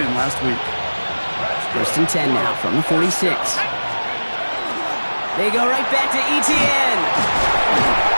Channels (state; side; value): inverted; both; correlation -1.00